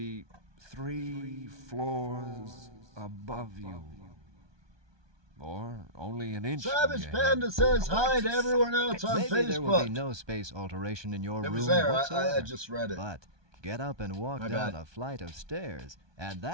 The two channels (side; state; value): left; late; 1.2 ms